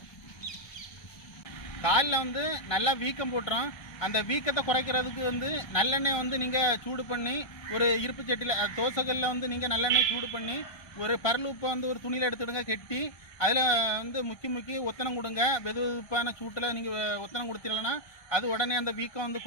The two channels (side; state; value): right; late; 1.2 ms